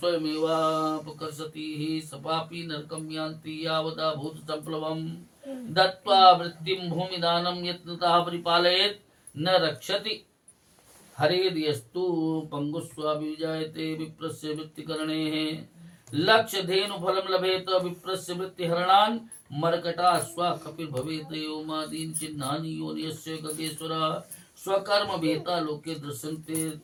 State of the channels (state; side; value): identical; both; correlation 1.00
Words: सपापि नरकं यान्ति यावदा भूत संप्लवम् दत्त्वा वृत्तिं भूमिदानं यत्नतः परिपालयेत् न रक्षति हरेर्यस्तु पंगुस्वाभिजायते विप्रस्य वृत्तिकरणेः लक्ष्य धेनु फलं लभेत विप्रस्य वृत्तिहरणान् मर्कटा स्वा कपिल भवेत योमादीन चिन्हानि योनियस्य गगेश्वरा स्वकर्म भेता लोके